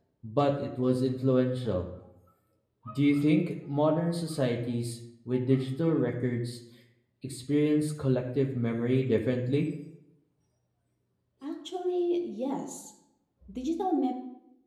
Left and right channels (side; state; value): both; identical; correlation 1.00